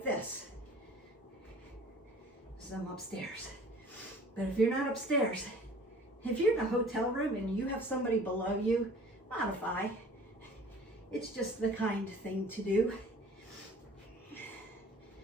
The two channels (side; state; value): both; normal; correlation 0.48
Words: this. So I'm upstairs. But if you're not upstairs, if you're in a hotel room and you have somebody below you, modify. It's just the kind thing to do.